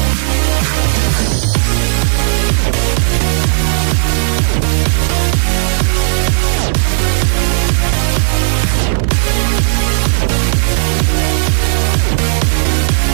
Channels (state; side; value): silent; left; digital silence